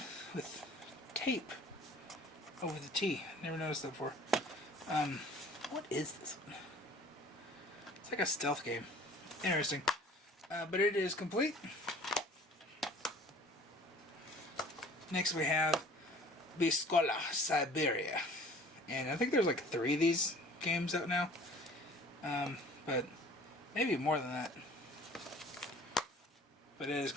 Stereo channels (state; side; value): normal; both; correlation 0.49